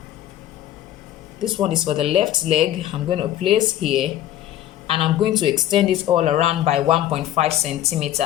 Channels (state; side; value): quieter; right; 12.7 dB